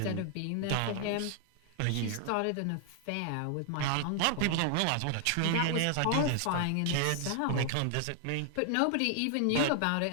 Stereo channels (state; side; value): different; both; correlation 0.00